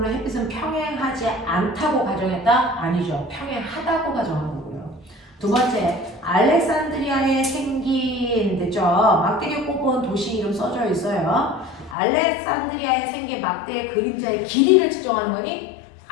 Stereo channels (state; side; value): drops out; right; at 12.0 s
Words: 햇빛은 평행하지 않다고 가정했다? 아니죠. 평행하다고 가정한 거고요. 두 번째, 알렉산드리아에 생긴, 됐죠? 막대기 꼽은 도시 이름 써져 있어요. 알렉산드리아에 생긴 막대의 그림자의 길이를 측정하는 거니?